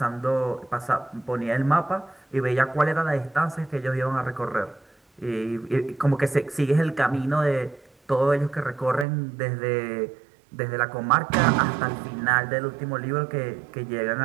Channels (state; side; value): drops out; left; at 9.1 s